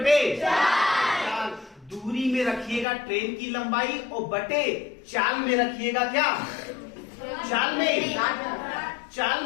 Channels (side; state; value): right; drops out; at 2.9 s